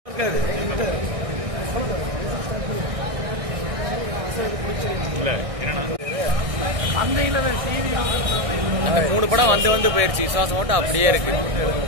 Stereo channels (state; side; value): late; left; 1.6 ms